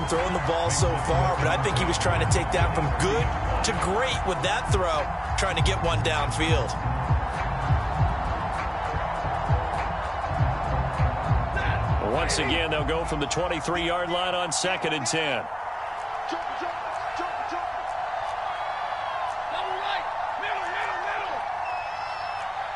throwing the ball so far, but I think he was trying to take that from good to great with that throw, trying to get one downfield. Once again, they'll go from the 23-yard line on 2nd and 10.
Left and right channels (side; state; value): both; identical; correlation 1.00